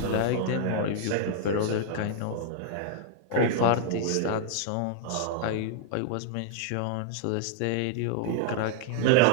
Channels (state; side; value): different; both; correlation -0.01